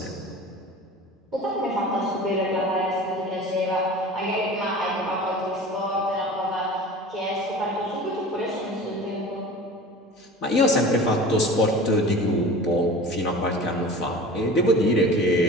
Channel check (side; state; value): both; normal; correlation 0.38